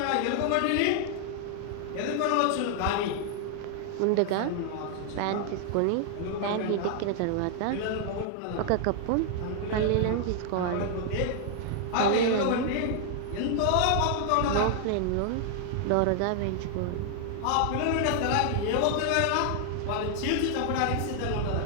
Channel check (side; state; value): both; different; correlation 0.00